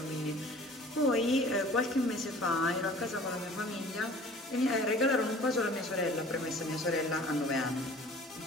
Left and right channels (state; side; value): normal; both; correlation 0.48